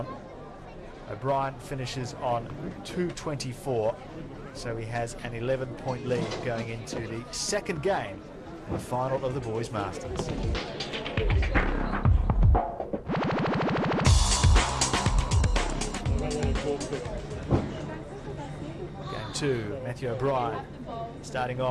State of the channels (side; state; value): both; identical; correlation 1.00